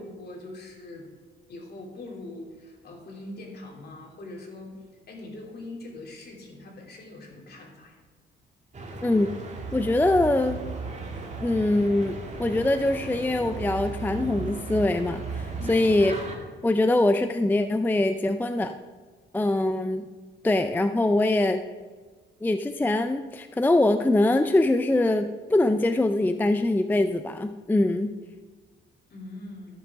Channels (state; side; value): normal; both; correlation 0.89